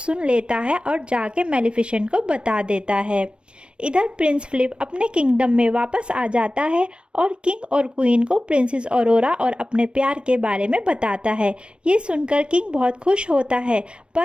लेता है और जाके मैलेफिसेंट को बता देता है। इधर प्रिंस फिलिप अपने किंगडम में वापस आ जाता है और किंग और क्वीन को प्रिंसेस ऑरोरा और अपने प्यार के बारे में बताता है। ये सुनकर किंग बहुत खुश होता है,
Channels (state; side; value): late; left; 0.057 ms